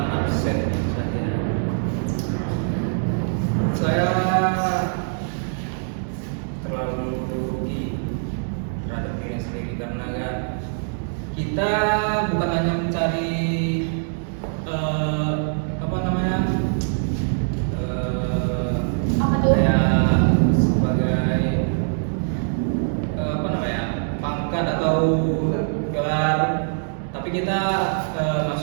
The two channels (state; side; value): silent; left; digital silence